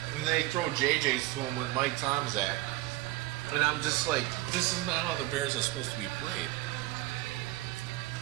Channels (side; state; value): left; quieter; 18.3 dB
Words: and they throw JJs to him with Mike Tomczak. And I'm just like, this is not how the Bears are supposed to be played.